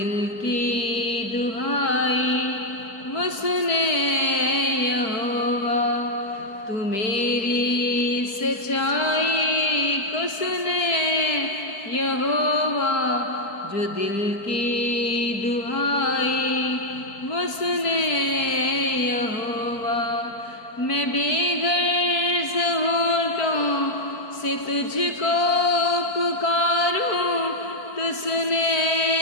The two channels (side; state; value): right; late; 4.6 ms